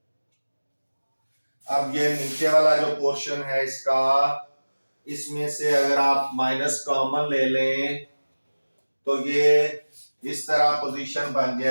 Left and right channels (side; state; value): both; inverted; correlation -1.00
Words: अब ये नीचे वाला जो पोर्शन है इसका, इसमें से अगर आप माइनस कॉमन ले लें तो ये इस तरह पोजीशन बन